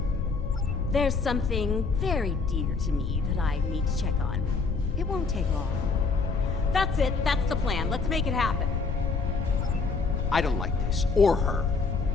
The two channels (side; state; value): right; quieter; 4.6 dB